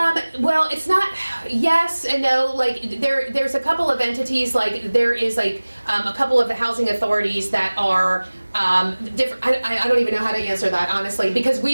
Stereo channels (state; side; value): inverted; both; correlation -1.00